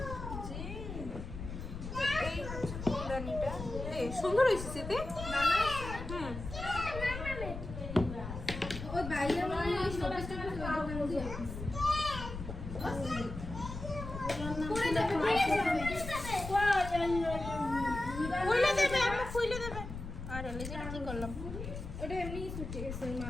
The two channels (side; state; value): left; noise; rumble, 8 dB below the sound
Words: হচ্ছে ফুলদানিটা। সুন্দর হয়েছে সেতে। হুম, ওই বাইরে মানে ওই শোকেসটা ওই দোকান দিয়ে পরে যাবে খুলে দেবে, আমরা খুলে দেবে। আরে লেজেটা কি করলাম? ওটা এমনি ছুটে গেছে ওই